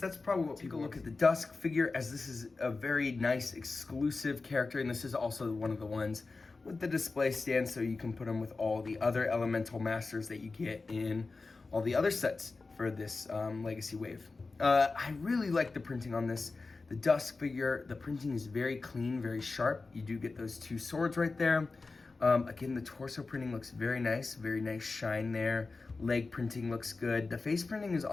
that's probably what people look at the Dusk figure, as this is a very nice exclusive character, and this is also one of the ones with the display stand, so you can put them with all the other elemental masters that you get in all the other sets for this legacy wave. I really like the printing on this. The Dusk figure, the printing is very clean, very sharp. You do get those 2 swords right there. Again, the torso printing looks very nice shine there. Leg printing looks good. The face printing is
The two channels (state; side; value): quieter; right; 3.9 dB